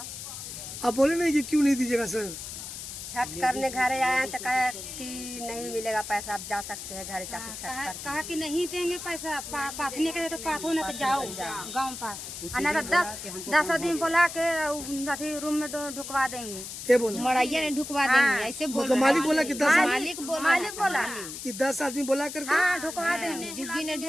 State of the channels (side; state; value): left; noise; hiss, 9 dB below the sound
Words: आप बोले नहीं कि क्यों नहीं दीजिएगा सर? छठ करने घर आया तो कहा कि नहीं मिलेगा पैसा, आप जा सकते हैं घर जाके छठ कर। कहा कि नहीं देंगे पैसा, पाथने के तो पाथो ना तो जाओ गाँव पर, ना तो 10 आदमी बुला के अथी रूम में ढुकवा देंगे। क्या बोला? मड़ैया ने ढुकवा देंगे ऐसे बोल तो मालिक बोला कि 10 मालिक बोला कि 10 आदमी बोला करके हाँ ढुकवा देंगे, झुग्गी ने